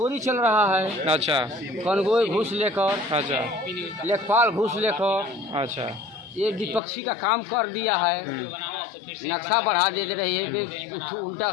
चल रहा है, अच्छा कनगोई घूस लेकर, अच्छा लेखपाल घूस लेकर, अच्छा ये विपक्षी का काम कर दिया है। नक्शा बढ़ा दे रही है, उल्टा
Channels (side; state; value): right; drops out; at 6.8 s